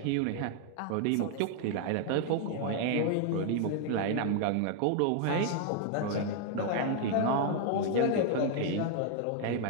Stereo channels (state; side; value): different; both; correlation 0.00